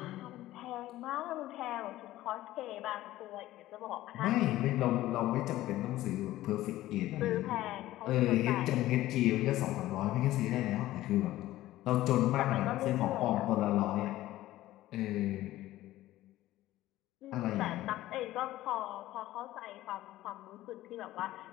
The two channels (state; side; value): quieter; right; 15.5 dB